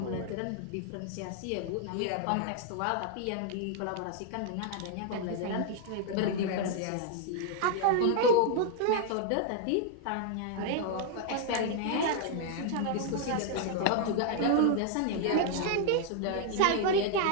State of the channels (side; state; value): both; different; correlation 0.00